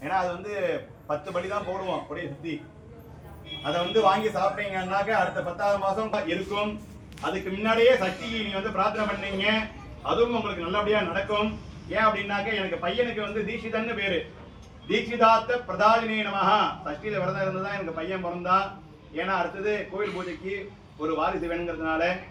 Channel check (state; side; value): identical; both; correlation 1.00